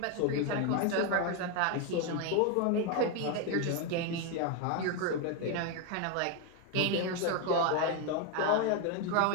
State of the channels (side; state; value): both; different; correlation 0.01